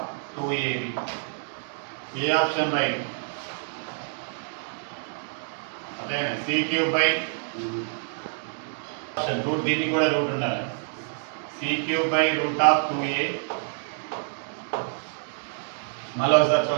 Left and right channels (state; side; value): silent; left; digital silence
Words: ఏ option right? అదే c cube by route, దీనికి కూడా రూట్ ఉండాలి. c cube by √2a. మళ్ళీ ఒకసారి